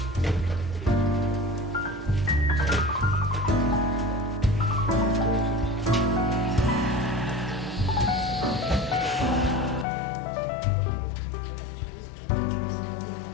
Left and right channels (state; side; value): drops out; right; at 9.9 s